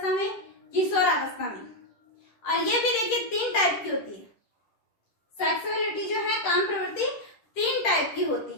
में, किशोरावस्था में। और ये भी देखिए 3 टाइप की होती है। सेक्सुअलिटी जो है, काम प्रवृत्ति 3 टाइप की होती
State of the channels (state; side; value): late; right; 10 ms